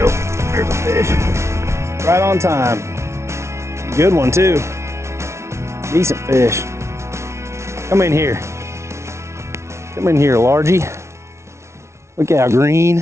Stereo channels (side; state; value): left; late; 0.13 ms